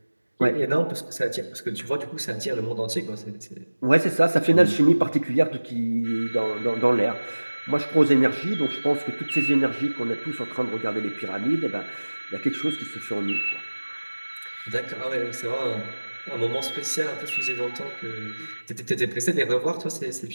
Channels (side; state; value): both; inverted; correlation -1.00